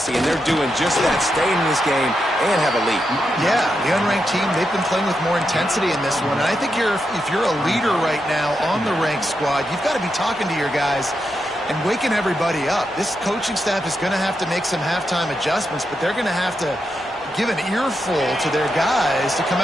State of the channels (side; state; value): both; normal; correlation 0.85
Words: and they're doing just that, staying in this game and have a lead. Yeah, the unranked team, they've been playing with more intensity in this one. And I think if you're a leader right now on the ranked squad, you've got to be talking to your guys and waking everybody up. This coaching staff is going to have to make some halftime adjustments, but they're going to have to give an earful to their guys to come